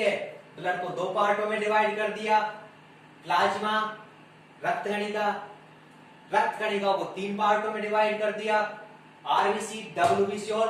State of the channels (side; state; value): both; identical; correlation 1.00